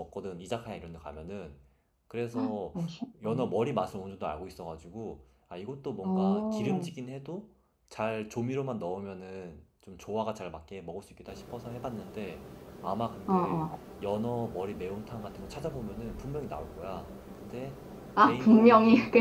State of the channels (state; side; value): identical; both; correlation 1.00